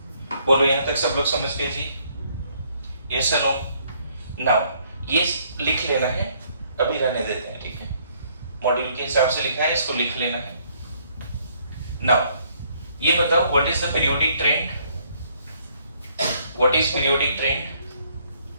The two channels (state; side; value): inverted; both; correlation -0.66